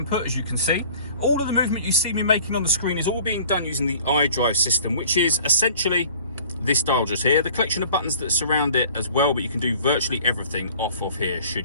as you can see. All of the movement you see me making on the screen is all being done using the iDrive system, which is essentially this dial just here, the collection of buttons that surround it as well, but you can do virtually everything off of here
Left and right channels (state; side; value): inverted; both; correlation -0.48